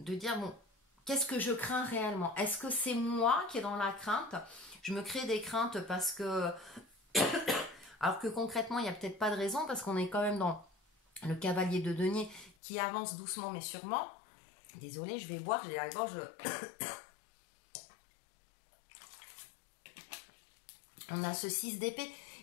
dire, bon, qu'est-ce que je crains réellement? Est-ce que c'est moi qui est dans la crainte? Je me crée des craintes parce que... Alors que concrètement, il n'y a peut-être pas de raison parce qu'on est quand même dans le cavalier de denier qui avance doucement mais sûrement. Désolée, je vais boire, j'ai la gorge... On a ce 6 d'épée.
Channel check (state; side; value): drops out; right; at 12.6 s